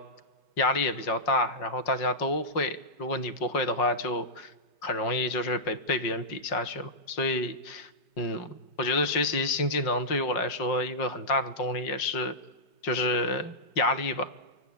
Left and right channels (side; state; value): right; late; 5.5 ms